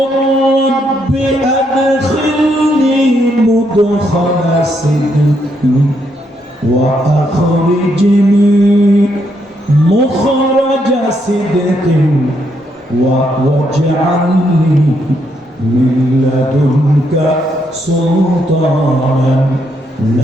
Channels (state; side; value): normal; both; correlation 0.76